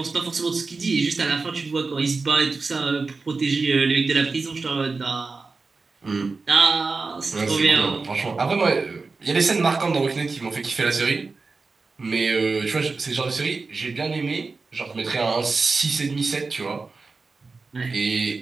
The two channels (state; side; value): quieter; left; 4.1 dB